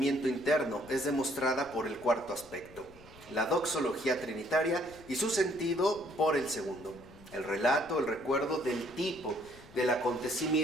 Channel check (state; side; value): noise; left; rumble, 22 dB below the sound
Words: interno es demostrada por el cuarto aspecto, la doxología trinitaria, y su sentido por el segundo, el relato, el recuerdo del tipo del